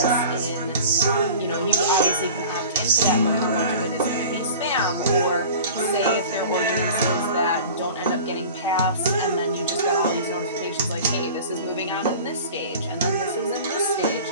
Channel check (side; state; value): both; inverted; correlation -0.39